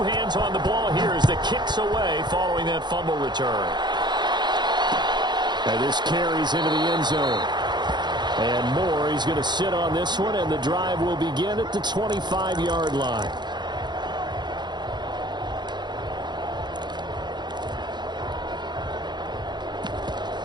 hands on the ball here as the kick's away following that fumble return. And this carries into the end zone. And Moore, he's going to sit on this one, and the drive will begin at the 25-yard line.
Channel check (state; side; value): late; left; 0.21 ms